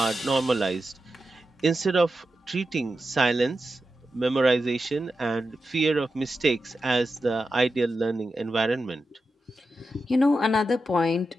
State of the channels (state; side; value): normal; both; correlation 0.90